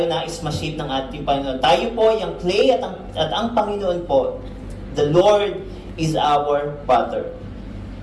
nais ma-shape ng ating Panginoon. Tayo po yung clay at ang Panginoon po, the Lord is our potter.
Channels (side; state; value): both; identical; correlation 1.00